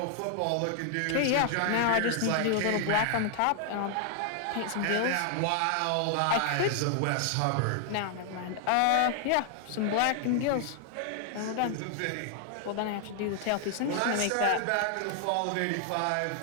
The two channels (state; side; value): different; both; correlation 0.00